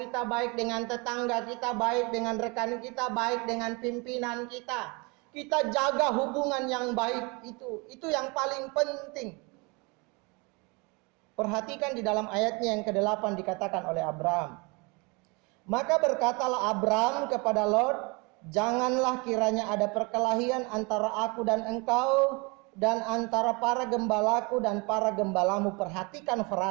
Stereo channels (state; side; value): quieter; left; 29.0 dB